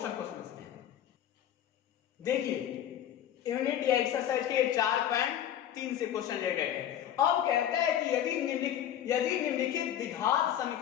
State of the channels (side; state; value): right; quieter; 10.7 dB